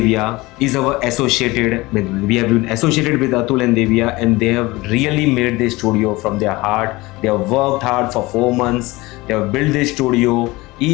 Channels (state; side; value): quieter; right; 21.4 dB